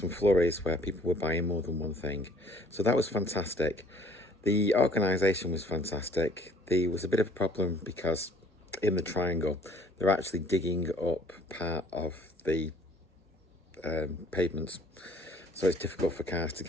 flurries where people were buying more than one thing, so that was fantastic. The organisation was fantastic. There was a bit of a problem because in the triangle they're actually digging up part of the pavements, so it's difficult for cars to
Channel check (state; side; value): normal; both; correlation 0.57